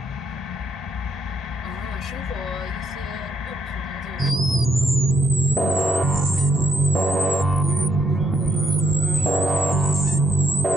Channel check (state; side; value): normal; both; correlation 0.73